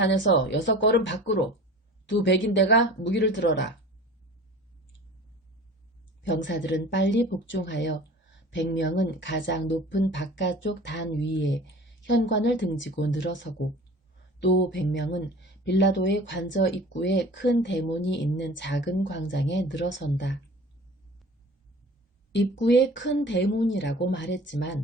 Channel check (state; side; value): normal; both; correlation 0.42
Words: 6걸음 밖으로 두 백인대가 무기를 들어라. 병사들은 빨리 복종하여 100명은 가장 높은 바깥쪽 단 위에 현관을 등지고 늘어서고 또 100명은 빌라도의 관저 입구에 큰 대문이 있는 작은 광장에 늘어선다. 입구에 큰 대문이라고